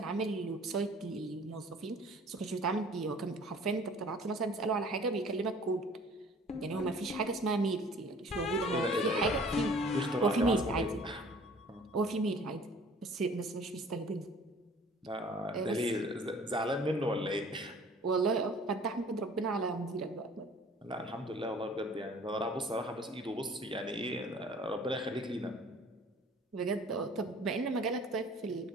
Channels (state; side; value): normal; both; correlation 0.51